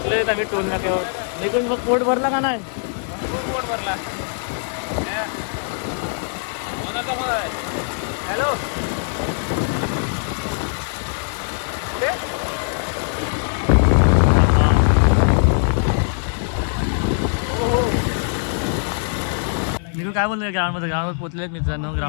आम्ही टोल नाक्यावर. निघून मग पोट भरला का नाही. पोट भरला. हॅलो काय बोलले ग्राउंडमध्ये? ग्राउंडवर पोहोचलेत मित्रांनो.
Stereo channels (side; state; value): right; silent; digital silence